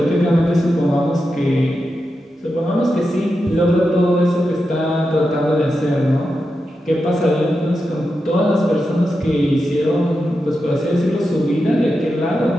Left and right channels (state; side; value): normal; both; correlation 0.89